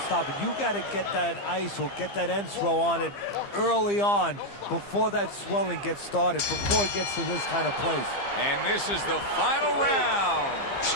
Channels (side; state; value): right; late; 15 ms